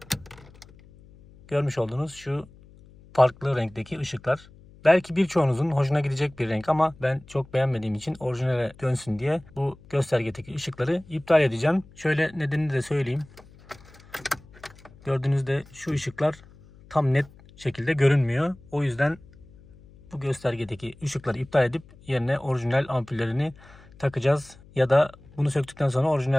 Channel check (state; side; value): noise; left; hum, 24 dB below the sound